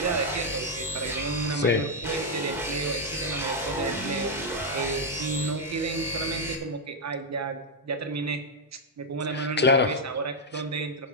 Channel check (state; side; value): normal; both; correlation 0.00